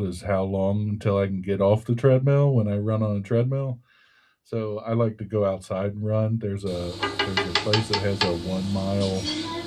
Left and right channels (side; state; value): both; identical; correlation 1.00